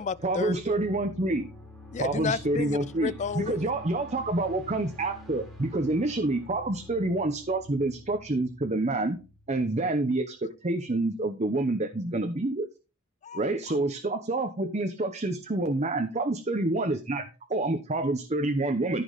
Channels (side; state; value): both; normal; correlation 0.48